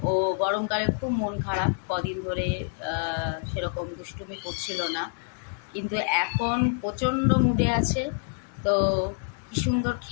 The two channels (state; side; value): silent; right; digital silence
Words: ও গরমকালে খুব মন খারাপ, কদিন ধরে সেরকম দুষ্টুমি করছিল না, কিন্তু এখন প্রচণ্ড মুডে আছে। তো কি সুন্দর